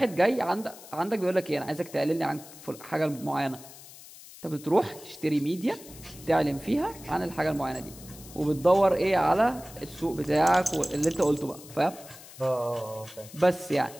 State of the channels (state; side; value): noise; left; hiss, 18 dB below the sound